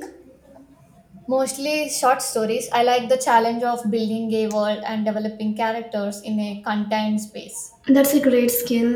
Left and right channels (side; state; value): both; identical; correlation 1.00